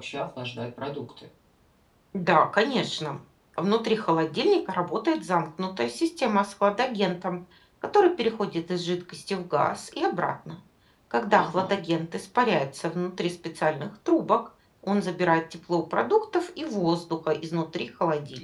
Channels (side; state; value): both; identical; correlation 1.00